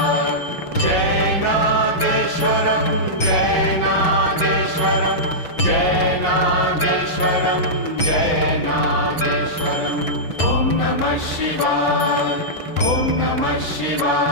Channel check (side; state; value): right; late; 6.1 ms